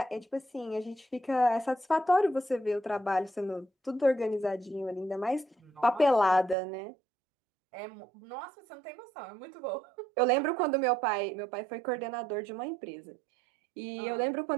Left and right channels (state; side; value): drops out; left; at 6.6 s